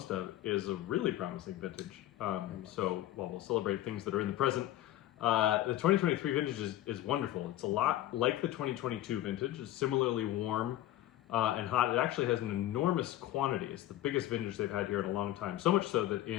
of, is a really promising vintage. So while we'll celebrate things that are in the present, the 2023 vintage is wonderful. It's a lot like the 2022 vintage. It's similarly warm and hot. It actually has an enormous quantity. It's the biggest vintage they've had here in a long time. So much so that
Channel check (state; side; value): quieter; right; 13.9 dB